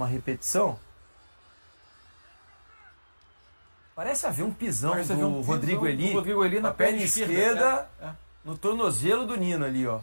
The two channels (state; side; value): inverted; both; correlation -1.00